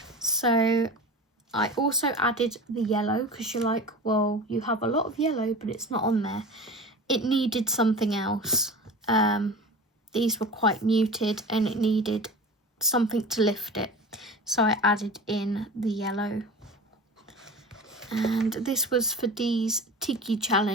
So I also added the yellow, because you're like, well, you have a lot of yellow but it's not on there. It needed something else. These were quite muted and it needed something to lift it, so I added in the yellow. And this was for Dee's Tiki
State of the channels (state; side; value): normal; both; correlation 0.35